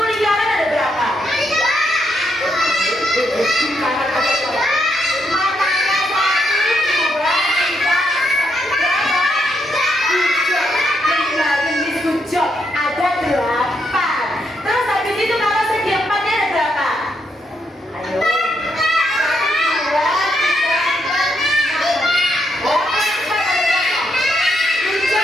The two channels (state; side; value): normal; both; correlation 0.78